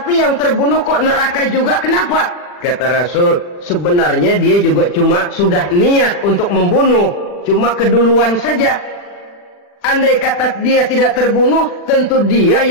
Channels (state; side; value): late; right; 39 ms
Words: yang terbunuh kok neraka juga, kenapa? Kata Rasul, sebenarnya dia juga cuma sudah niat untuk membunuh, cuma keduluan saja. Andai kata dia tidak terbunuh, tentu dia